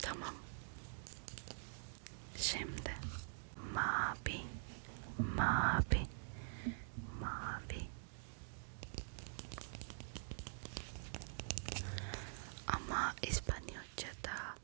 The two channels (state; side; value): silent; left; digital silence